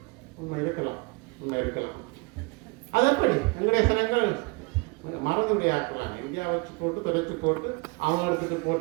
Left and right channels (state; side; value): quieter; left; 28.9 dB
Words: உண்மை இருக்கலாம். அது எப்படி எங்களுடைய சனங்கள் மறந்துடைய ஆக்கலாம், இந்தியா வச்சு போட்டு தொடச்சு போட்டு அவங்க எடுத்துட்டு